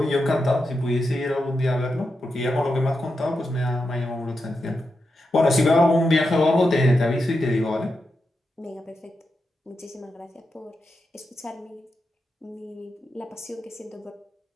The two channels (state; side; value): normal; both; correlation 0.87